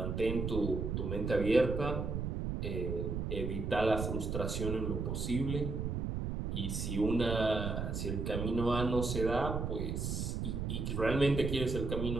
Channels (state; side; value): noise; right; rumble, 2 dB below the sound